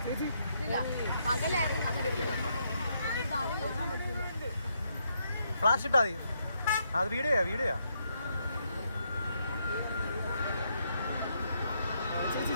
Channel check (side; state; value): both; inverted; correlation -0.77